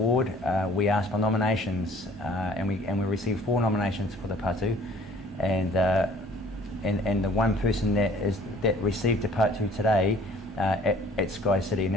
we asked for nominations, and we received 4 nominations for the Patu, and the one person that received the Patu today at Sky City.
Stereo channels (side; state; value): both; normal; correlation 0.53